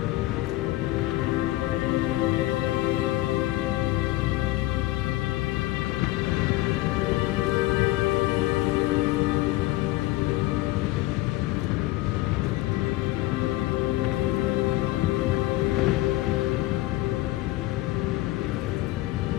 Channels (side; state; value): right; quieter; 17.8 dB